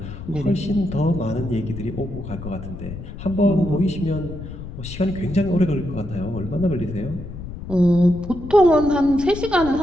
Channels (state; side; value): noise; left; rumble, 10 dB below the sound